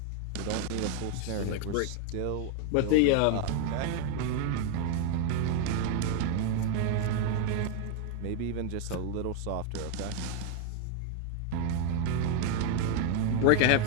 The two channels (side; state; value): both; different; correlation 0.01